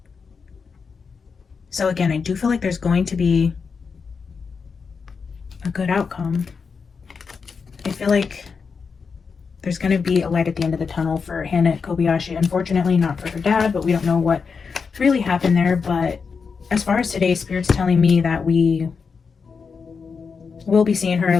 So again, I do feel like there's going to be a good outcome. I feel like there's going to be a light at the end of the tunnel for Hannah Kobayashi. Unfortunately, not for her dad, but we don't know what really happened there. But as far as today, Spirit's telling me that we will be seeing her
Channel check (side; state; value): right; quieter; 5.4 dB